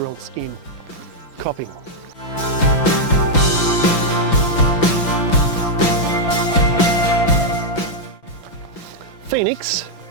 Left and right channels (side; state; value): right; late; 5.9 ms